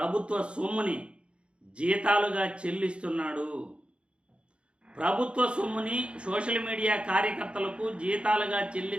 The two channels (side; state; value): left; late; 0.057 ms